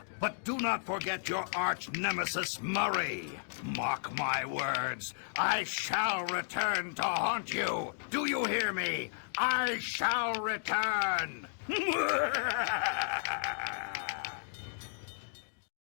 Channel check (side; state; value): right; silent; digital silence